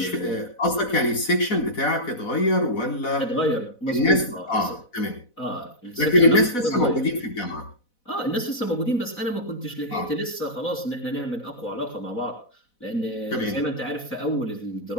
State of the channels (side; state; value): right; late; 4.1 ms